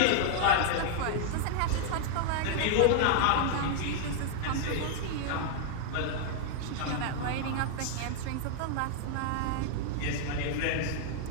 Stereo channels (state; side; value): different; both; correlation 0.00